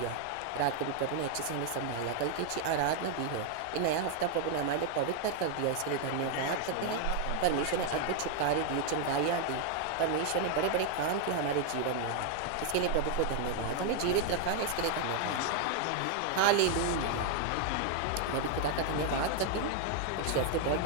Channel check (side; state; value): both; different; correlation 0.00